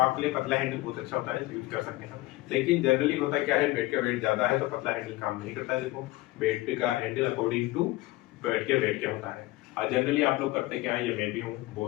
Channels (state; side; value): quieter; right; 19.2 dB